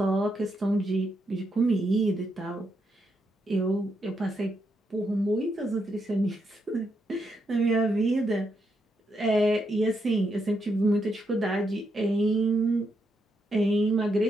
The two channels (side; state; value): both; normal; correlation 0.80